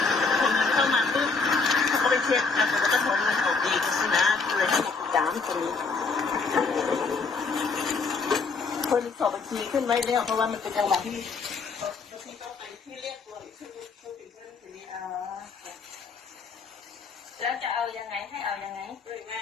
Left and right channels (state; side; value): quieter; right; 4.5 dB